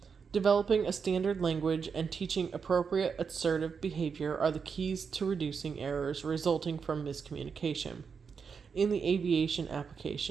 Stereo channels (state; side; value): quieter; left; 5.9 dB